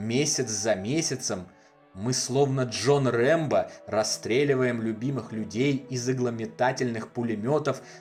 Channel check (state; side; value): identical; both; correlation 1.00